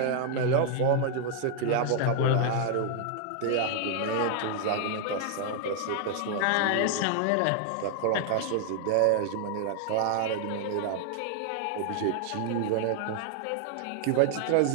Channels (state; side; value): different; both; correlation 0.00